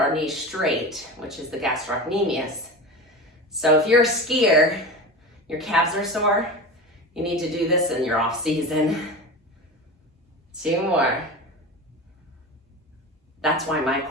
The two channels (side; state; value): both; normal; correlation 0.29